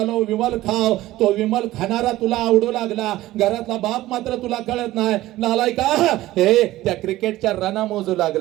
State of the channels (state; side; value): quieter; left; 16.2 dB